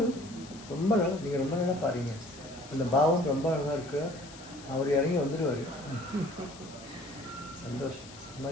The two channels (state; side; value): noise; left; hiss, 18 dB below the sound